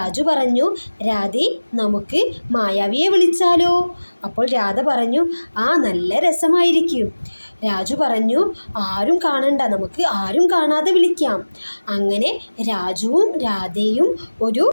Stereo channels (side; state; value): both; inverted; correlation -1.00